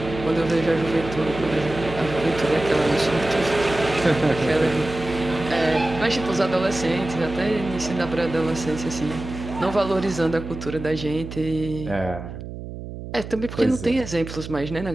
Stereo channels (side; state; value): right; noise; hum, 10 dB below the sound